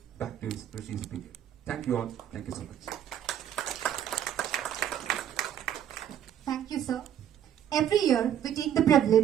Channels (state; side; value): quieter; left; 10.1 dB